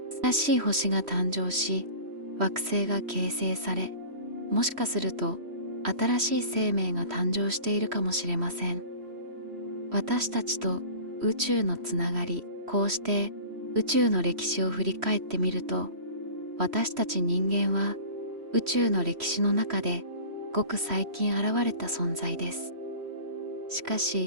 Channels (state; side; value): late; left; 3.1 ms